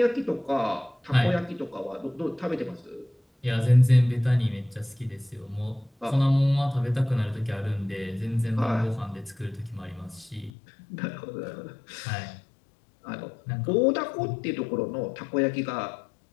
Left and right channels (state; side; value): drops out; right; at 10.5 s